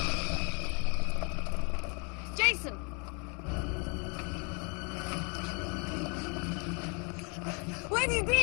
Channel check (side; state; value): right; quieter; 34.4 dB